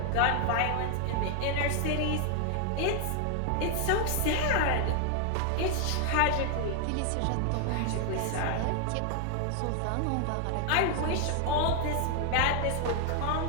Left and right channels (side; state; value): both; different; correlation 0.00